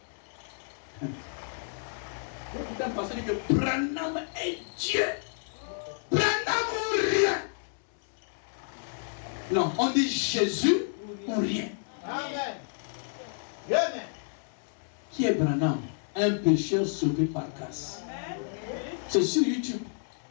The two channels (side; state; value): right; silent; digital silence